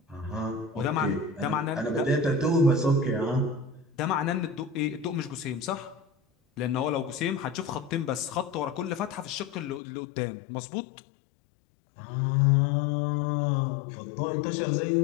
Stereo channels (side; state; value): right; drops out; at 9.8 s